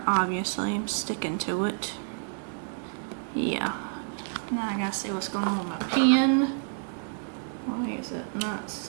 obviously. I'm sticking to it. Yeah. Now I gotta see what's going on with my pen. Why is it not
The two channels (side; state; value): left; silent; 59 dB below the other